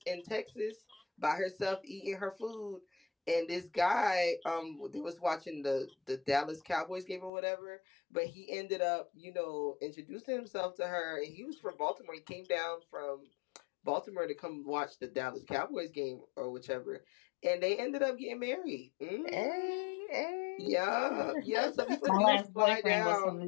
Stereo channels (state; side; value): drops out; right; at 7.3 s